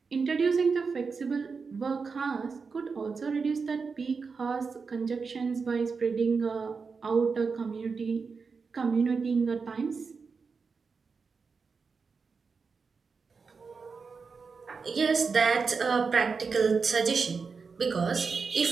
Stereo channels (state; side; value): quieter; left; 5.0 dB